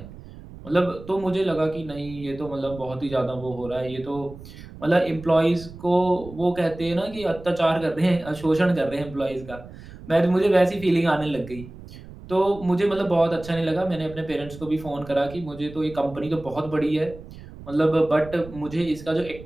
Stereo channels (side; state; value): right; noise; rumble, 16 dB below the sound